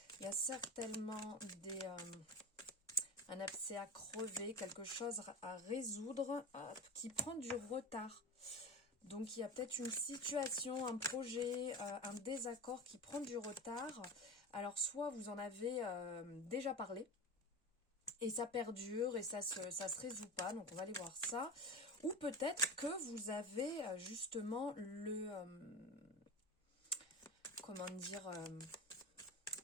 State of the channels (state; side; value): normal; both; correlation 0.26